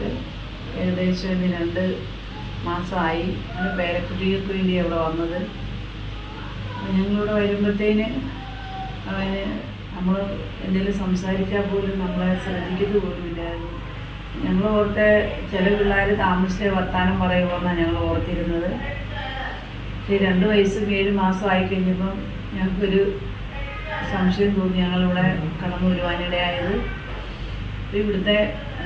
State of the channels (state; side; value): identical; both; correlation 1.00